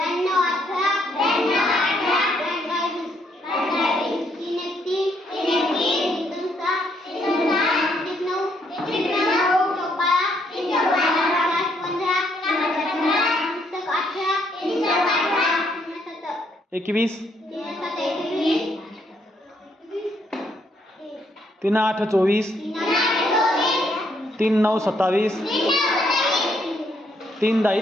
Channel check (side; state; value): both; normal; correlation 0.72